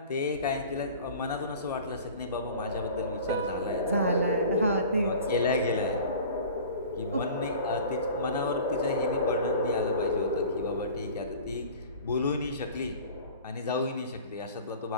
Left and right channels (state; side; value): inverted; both; correlation -0.42